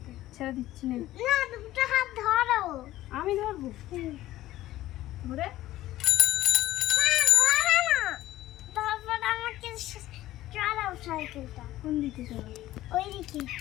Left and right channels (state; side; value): quieter; right; 15.2 dB